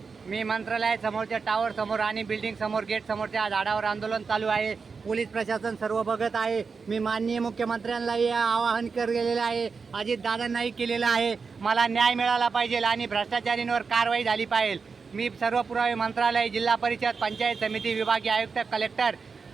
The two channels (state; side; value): quieter; left; 5.1 dB